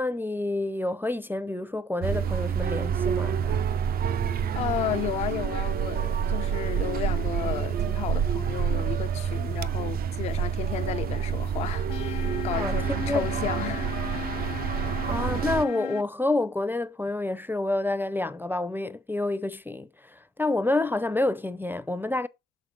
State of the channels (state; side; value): normal; both; correlation 0.61